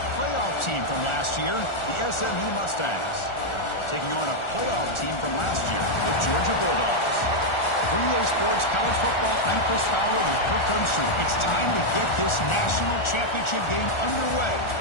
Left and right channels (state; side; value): late; right; 1.4 ms